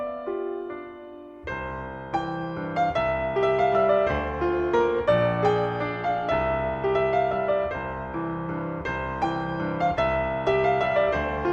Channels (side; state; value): both; identical; correlation 1.00